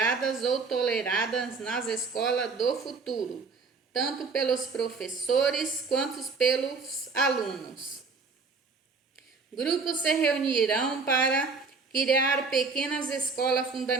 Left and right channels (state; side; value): quieter; left; 4.5 dB